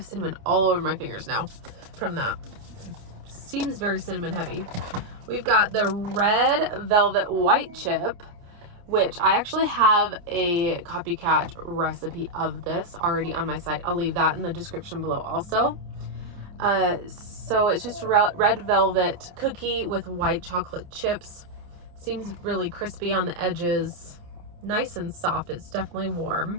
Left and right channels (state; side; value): late; left; 29 ms